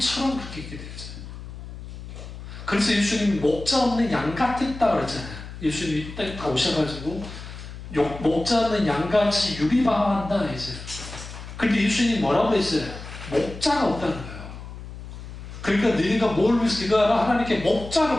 그렇게 있게 되죠. 그래서 예수님이 목자 없는 양 같았다 그랬잖아요. 예수님이 다 오셔가지고 목자 없는 양같이 유리방황한다 했어요. 근데 예수님이 뭐라고 했어요? 목자가 없다는 거예요. 그러니까 너희가 뭘 위해서 기도하라? 하나님께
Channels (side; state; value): left; noise; hum, 12 dB below the sound